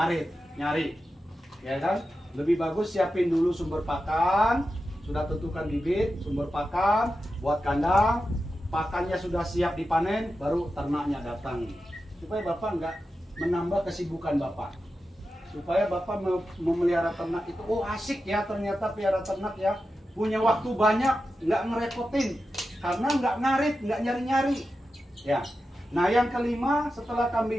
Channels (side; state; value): both; normal; correlation 0.91